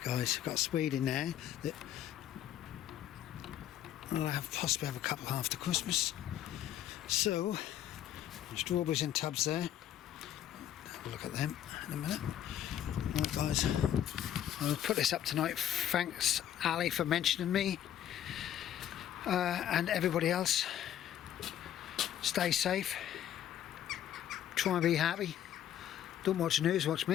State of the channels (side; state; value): right; quieter; 11.0 dB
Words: guys, I've got Swede in there that I'll possibly have a couple after Christmas. So, strawberries in tubs there. Have a look at them in a minute. Right, guys, I'll put this up tonight. Thanks, Ali, for mentioning me. And everybody else, stay safe, try and be happy, don't watch the news, watch